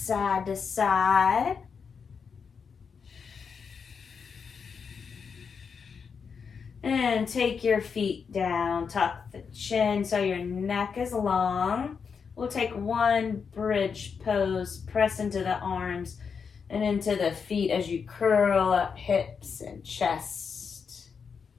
to side. And take your feet down. Tuck the chin so your neck is long. We'll take one bridge pose. Press into the arms and into the feet as you curl up hips and chest.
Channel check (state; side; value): quieter; right; 6.0 dB